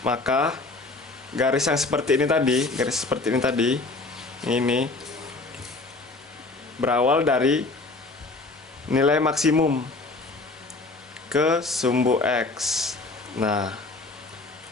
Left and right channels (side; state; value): right; quieter; 3.4 dB